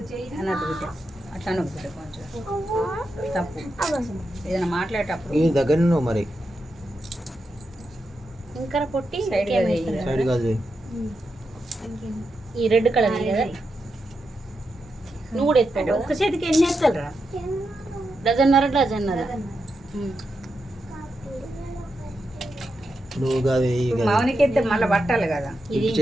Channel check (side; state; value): both; normal; correlation 0.86